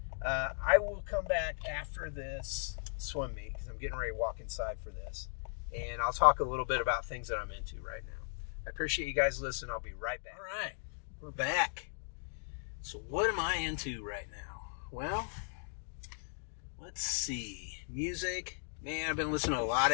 I will come back after this swim meet because I'm getting ready to walk inside for this, and I'll talk a little bit about things that I'm into right now. I appreciate you guys listening. I'll be right back. All right, we're back. So what am I into right now? Well, let's see. Music. Man, I've been listening to a lot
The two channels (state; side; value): silent; right; digital silence